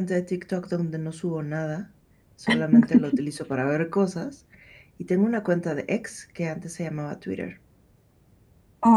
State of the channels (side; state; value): both; identical; correlation 1.00